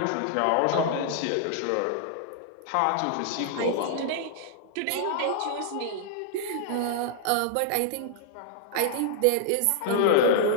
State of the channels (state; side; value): different; both; correlation -0.01